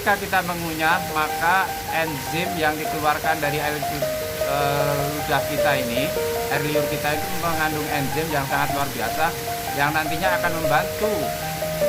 kita mengunyah, maka enzim yang dikeluarkan dari air ludah kita ini, air liur kita itu mengandung enzim yang sangat luar biasa, yang nantinya akan membantu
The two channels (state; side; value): identical; both; correlation 1.00